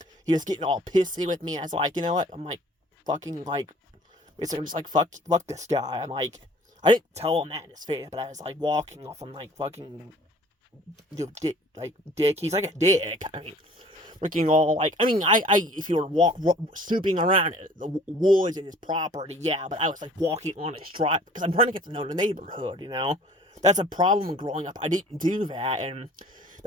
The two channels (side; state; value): both; normal; correlation 0.51